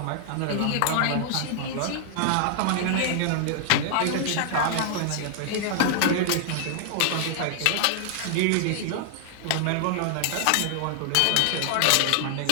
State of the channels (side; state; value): both; different; correlation 0.00